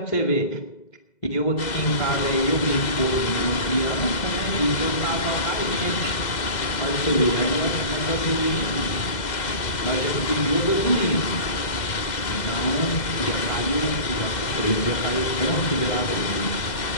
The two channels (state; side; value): late; right; 2.0 ms